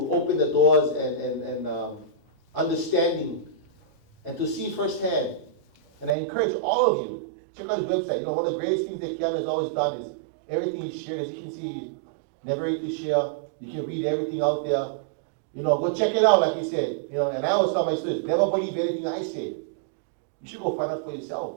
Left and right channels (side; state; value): left; drops out; at 6.2 s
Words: open the doors and understanding and to see firsthand. And I encourage all of you, check out his website. One of the greatest things that Keanu has always done is everything he's shared. As you can see, he's never ready to share. You can read everything out there. Go check it out, like he said. And I always tell my students, never believe anything I say. You should go find out for